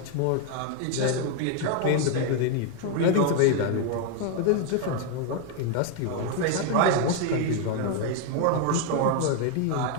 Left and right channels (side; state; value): both; different; correlation 0.01